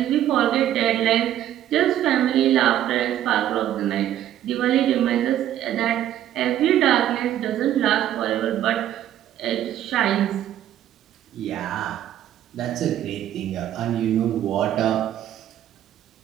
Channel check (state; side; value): quieter; left; 11.8 dB